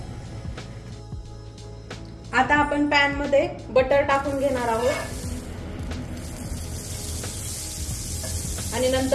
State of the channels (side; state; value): both; identical; correlation 1.00